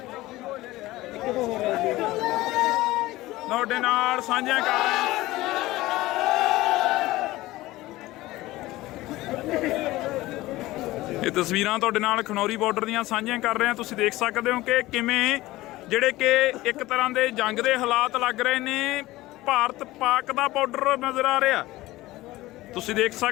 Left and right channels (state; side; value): quieter; right; 18.0 dB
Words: ਤੁਹਾਡੇ ਨਾਲ ਸਾਂਝੀਆਂ ਕਰ ਰਹੇ ਹਾਂ। ਇਹ ਤਸਵੀਰਾਂ ਤੁਹਾਡੇ ਨਾਲ ਖਨੌਰੀ ਬਾਰਡਰ ਦੀਆਂ ਸਾਂਝੀਆਂ ਕਰ ਰਹੇ ਹਾਂ। ਤੁਸੀਂ ਦੇਖ ਸਕਦੇ ਹੋ ਕਿ ਕਿਵੇਂ ਜਿਹੜੇ ਕਿ ਇੱਕ ਤਰ੍ਹਾਂ ਦੇ ਜੰਗ ਦੇ ਹਾਲਾਤ ਲੱਗ ਰਹੇ ਨੇ। ਭਾਰਤ ਪਾਕ ਦਾ ਬਾਰਡਰ ਨਜ਼ਰ ਆ ਰਿਹਾ। ਤੁਸੀਂ ਦੇਖ